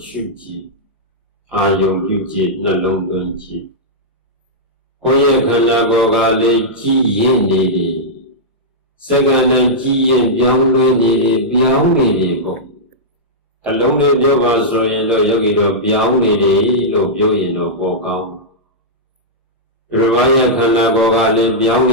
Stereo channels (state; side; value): normal; both; correlation -0.10